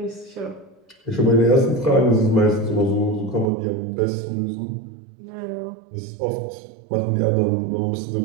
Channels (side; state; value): left; drops out; at 3.5 s